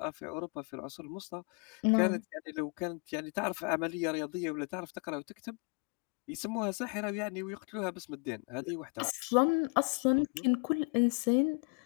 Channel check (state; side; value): quieter; right; 33.9 dB